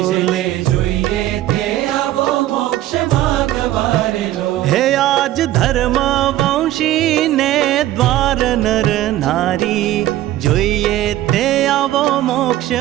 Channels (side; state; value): left; quieter; 14.3 dB